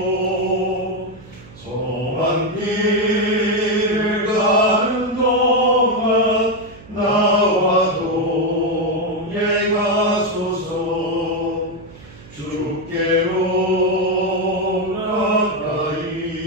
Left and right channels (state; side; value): noise; right; hum, 21 dB below the sound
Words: 험한 길을 가는 동안 나와 동행하소서. 주께로